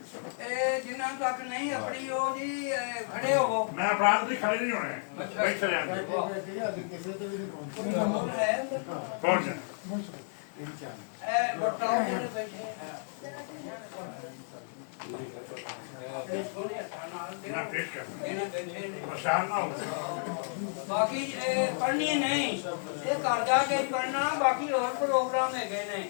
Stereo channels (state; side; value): silent; right; digital silence